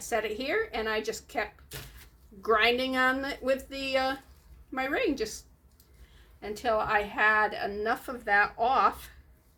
it here, and I just kept grinding on it with my ring just until I had enough of that off.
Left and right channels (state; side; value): identical; both; correlation 1.00